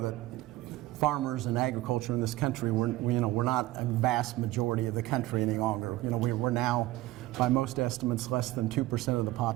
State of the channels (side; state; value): left; quieter; 17.4 dB